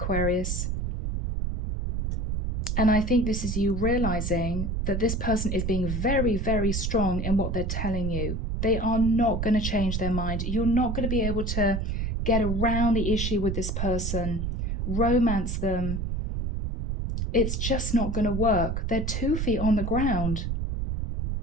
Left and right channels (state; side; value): noise; right; rumble, 1 dB below the sound